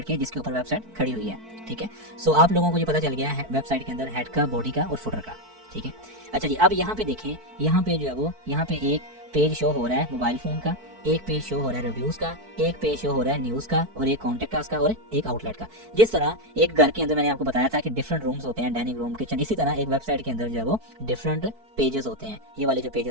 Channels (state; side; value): late; left; 4.5 ms